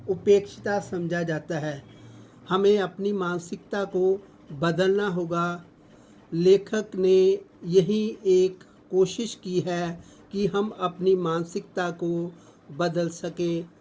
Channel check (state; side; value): identical; both; correlation 1.00